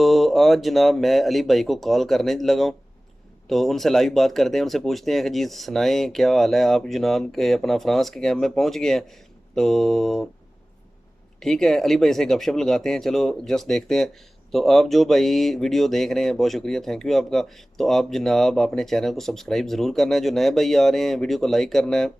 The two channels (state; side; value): normal; both; correlation 0.97